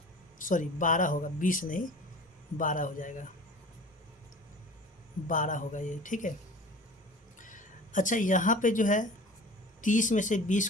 सॉरी 12 होगा, 20 नहीं 12 हो जाएगा, 12 होगा ये, ठीक है। अच्छा यहाँ पे जो है 30 में से 20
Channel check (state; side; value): normal; both; correlation 0.40